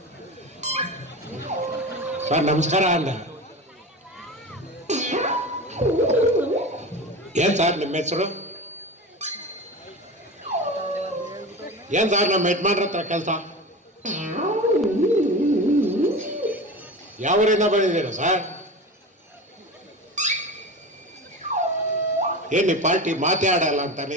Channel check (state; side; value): normal; both; correlation 0.29